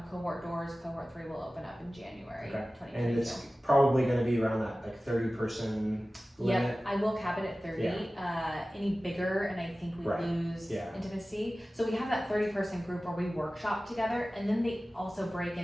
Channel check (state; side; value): normal; both; correlation 0.96